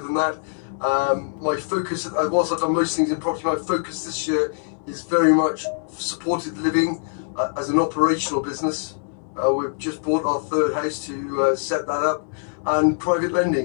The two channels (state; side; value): silent; right; 63 dB below the other